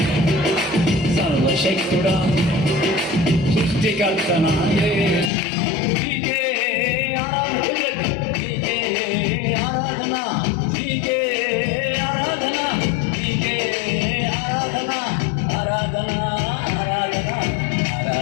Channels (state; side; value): drops out; right; at 5.3 s